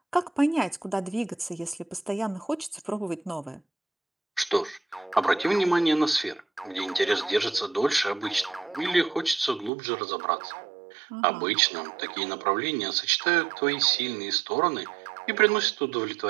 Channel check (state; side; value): drops out; left; at 9.7 s